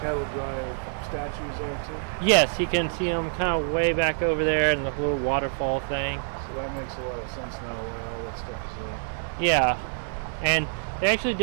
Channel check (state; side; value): silent; left; digital silence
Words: drive statues are too? Yes, you can see them kind of way back over there in the little waterfall thing. So that makes a lot of sense now why all that stuff is there. Yeah, and they actually